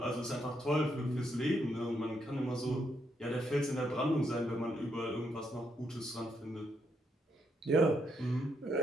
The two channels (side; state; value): both; normal; correlation 0.77